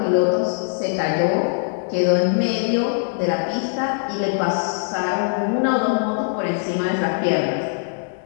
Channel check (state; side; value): silent; right; 65 dB below the other